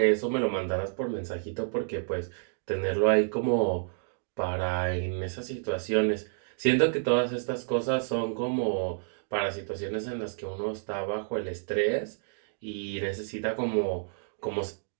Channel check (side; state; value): left; silent; digital silence